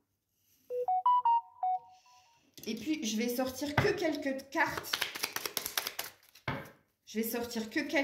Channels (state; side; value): identical; both; correlation 1.00